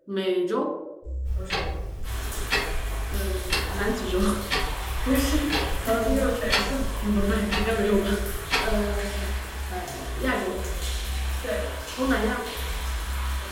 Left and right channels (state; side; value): identical; both; correlation 1.00